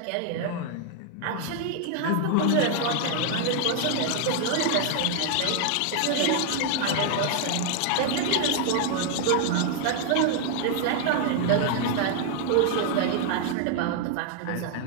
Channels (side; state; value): both; different; correlation 0.00